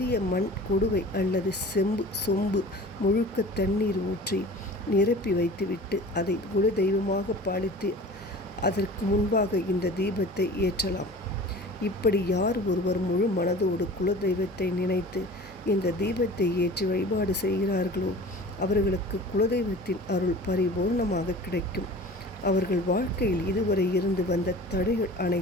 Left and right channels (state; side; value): normal; both; correlation 0.41